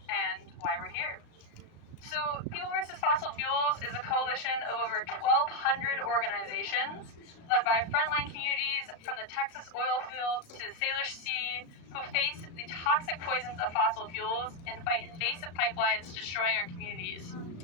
and why we're here. So, People vs. Fossil Fuels is a coalition of over 1,200 organizations led by frontline communities from the Texas oil fields to the Salish Sea who face the toxic poisons of fossil fuels and fight invasive pipelines destroying our communities.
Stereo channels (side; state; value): right; late; 35 ms